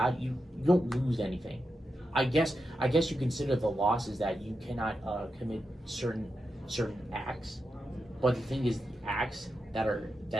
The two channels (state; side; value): normal; both; correlation 0.88